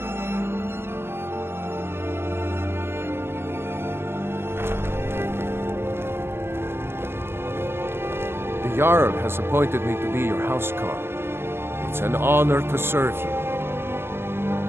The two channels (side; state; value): left; late; 0.11 ms